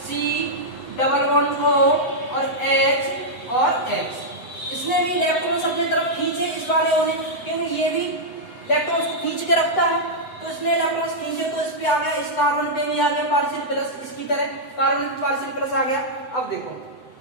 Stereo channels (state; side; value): late; right; 7.9 ms